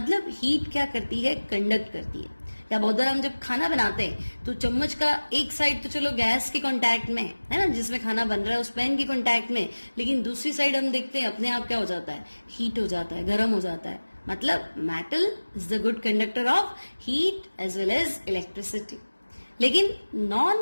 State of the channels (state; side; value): inverted; both; correlation -1.00